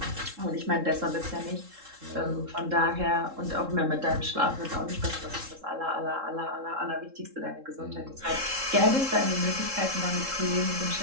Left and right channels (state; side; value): late; left; 3.7 ms